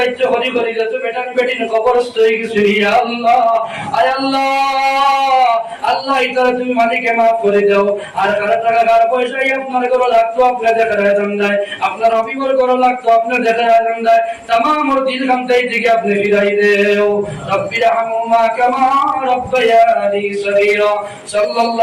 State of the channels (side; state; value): both; identical; correlation 1.00